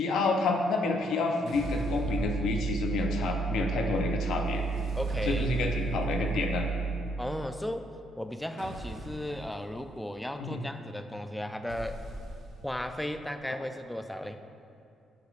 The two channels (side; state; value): both; normal; correlation 0.71